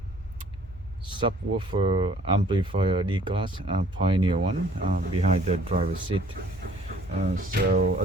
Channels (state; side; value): normal; both; correlation 0.56